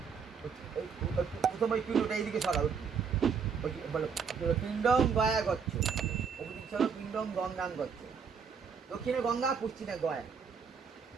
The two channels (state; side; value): quieter; left; 6.3 dB